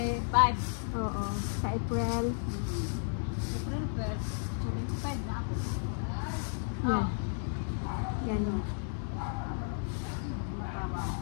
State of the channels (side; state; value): right; silent; digital silence